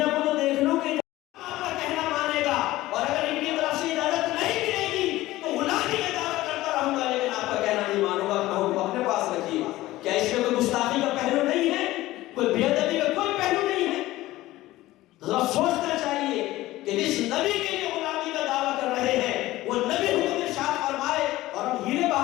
کو تو دیکھ لوں کہ آپ کا کہنا مانے گا، اور اگر ان کی طرف سے اجازت نہیں ملے گی تو غلامی کا دعویٰ کرتا رہوں گا، لیکن آپ کا کہنا نہیں مانوں گا، اپنا حکم اپنے پاس رکھیے۔ کیا اس میں کوئی گستاخی کا پہلو نہیں ہے؟ کوئی بے ادبی کا کوئی پہلو نہیں ہے؟ ذرا سوچنا چاہیے کہ جس نبی کے لیے غلامی کا دعویٰ کر رہے ہیں وہ نبی حکم ارشاد فرمائے اور ہم ہیلے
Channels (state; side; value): quieter; right; 17.0 dB